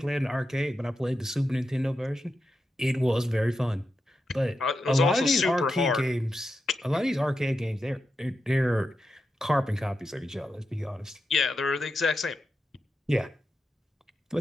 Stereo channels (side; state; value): both; normal; correlation 0.88